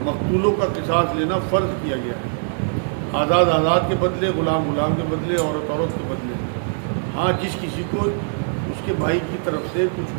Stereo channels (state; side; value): silent; left; digital silence